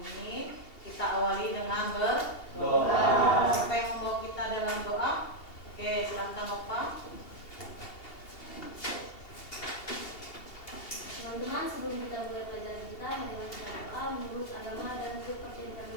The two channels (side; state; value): right; late; 2.8 ms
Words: kita awali dengan berdoa. Siapa yang membawa kita dalam doa? Oke, silakan Bapak. Teman-teman, sebelum kita mulai pelajaran kita, mari kita berdoa menurut agama dan kepercayaan